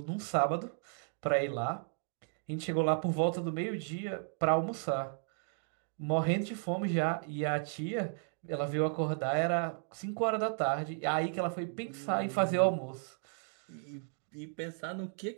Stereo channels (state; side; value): silent; left; 55 dB below the other